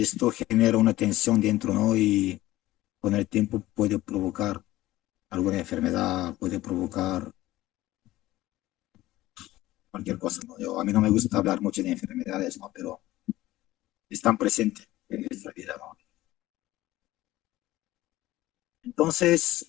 genera una tensión dentro, ¿no? Y con el tiempo puede provocar alguna enfermedad, puede provocar cualquier cosa, ¿no? A mí no me gusta hablar mucho de enfermedades, ¿no? Pero están presentes en nuestra vida, ¿no? Entonces,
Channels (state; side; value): quieter; right; 16.5 dB